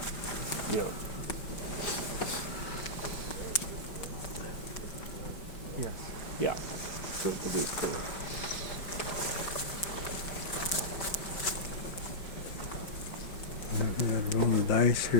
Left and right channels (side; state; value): right; late; 5.1 ms